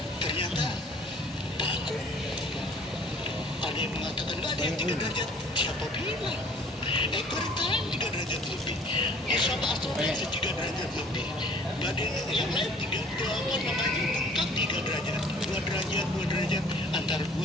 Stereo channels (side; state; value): both; normal; correlation 0.53